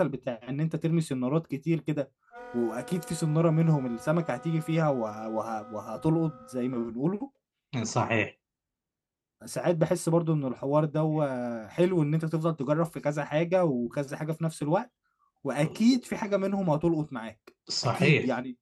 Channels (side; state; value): both; identical; correlation 1.00